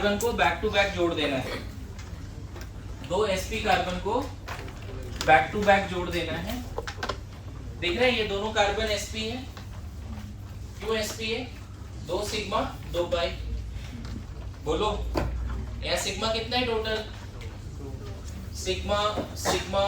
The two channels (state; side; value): identical; both; correlation 1.00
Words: को बैक टू बैक जोड़ देना है, 2 sp कार्बन को बैक टू बैक जोड़ देना है। दिख रहा है ये दोनों कार्बन sp है, क्यों sp है? 2 सिग्मा 2 पाई। बोलो यहाँ सिग्मा कितना है total? Sigma sigma